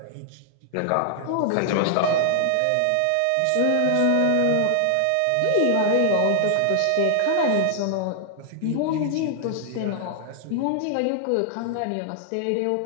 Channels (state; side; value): different; both; correlation 0.00